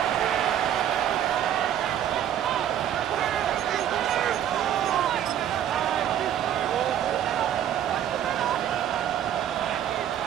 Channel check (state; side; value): quieter; left; 10.4 dB